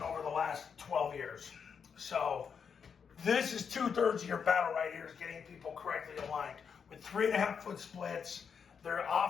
over the last 12 years. So this is 2/3 of your battle right here, is getting people correctly aligned. With 3.5-foot splits, they're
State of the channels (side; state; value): right; quieter; 6.6 dB